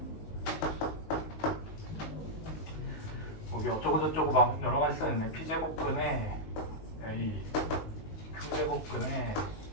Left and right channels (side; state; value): right; late; 19 ms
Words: 여기 어쩌고저쩌고 막 여러 가지 써있네. P제곱근에 A, Q제곱근에